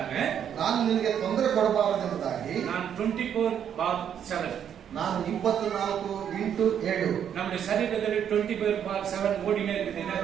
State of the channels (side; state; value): left; quieter; 8.9 dB